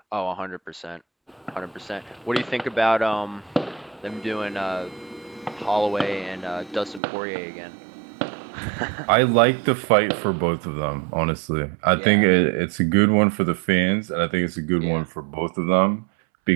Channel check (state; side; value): drops out; left; at 7.0 s